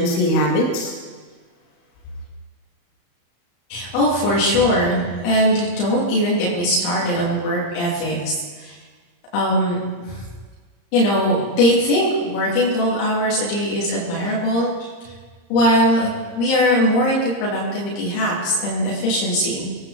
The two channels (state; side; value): late; right; 34 ms